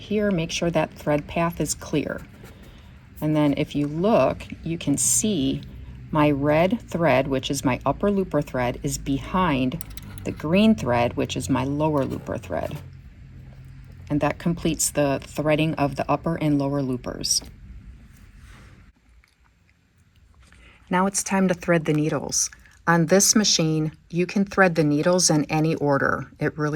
Make sure that thread path is clear. And then if you look, you can see my red thread, which is my upper looper thread, is behind the green thread, which is my lower looper thread. And that completes the threading of the upper and lower loopers. Now it's time to thread the needles. On this machine, you can thread the needles in any order. It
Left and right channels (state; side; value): identical; both; correlation 1.00